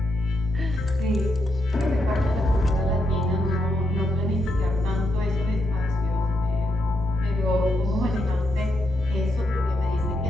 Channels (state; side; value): normal; both; correlation 0.80